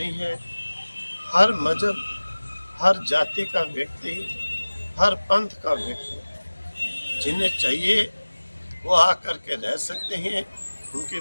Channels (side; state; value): both; inverted; correlation -1.00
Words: है। हर मजहब, हर जाति का व्यक्ति, हर पंथ का व्यक्ति, जिन्हें चाहिए वो आकर के रह सकते हैं, उनकी